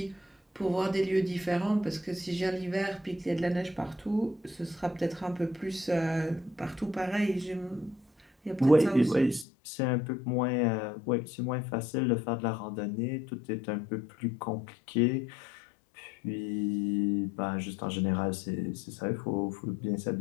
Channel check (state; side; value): drops out; right; at 9.5 s